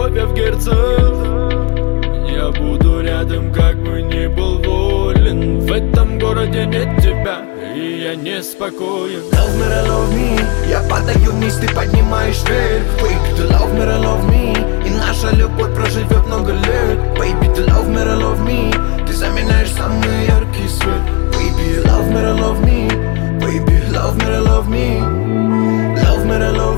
я в герцах. Я буду рядом, как бы ни был волен. В этом городе нет тебя, и я неспокоен. Love me, love me. Я падаю вниз, ты поднимаешь вверх. Baby, ты love me, love me. И наша любовь проживет много лет. Baby, ты love me, love me. Ты заменяешь самый яркий свет. Baby, love me, love me. Baby, love me, love me. Love me,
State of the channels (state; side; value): quieter; right; 29.5 dB